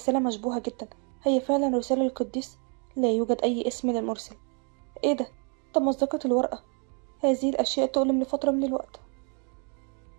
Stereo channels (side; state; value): left; quieter; 37.9 dB